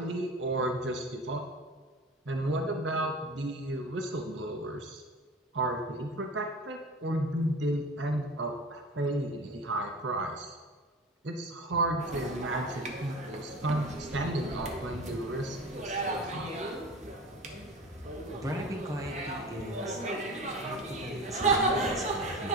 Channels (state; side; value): normal; both; correlation 0.35